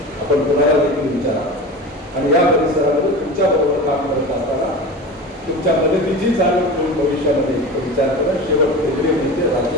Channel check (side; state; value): both; normal; correlation 0.31